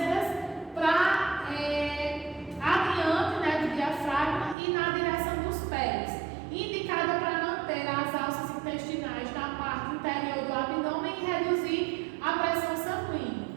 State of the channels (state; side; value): drops out; left; at 4.5 s